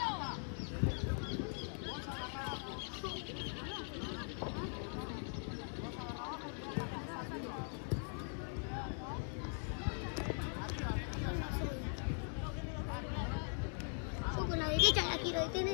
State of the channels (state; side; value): silent; right; 50 dB below the other